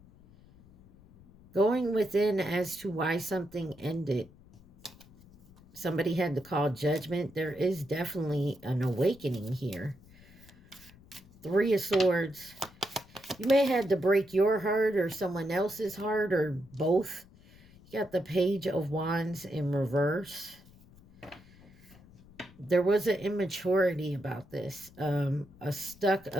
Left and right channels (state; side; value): noise; left; rumble, 24 dB below the sound